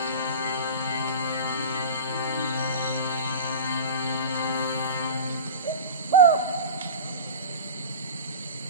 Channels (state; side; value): inverted; both; correlation -0.31